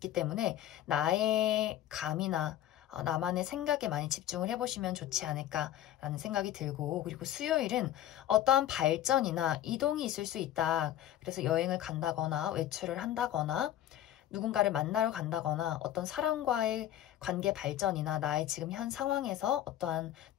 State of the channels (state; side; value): quieter; right; 12.4 dB